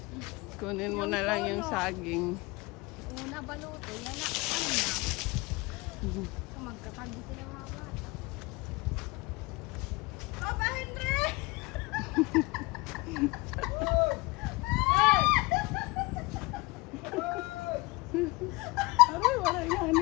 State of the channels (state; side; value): quieter; right; 24.3 dB